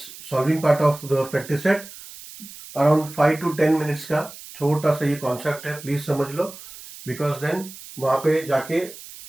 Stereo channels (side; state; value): right; noise; hiss, 16 dB below the sound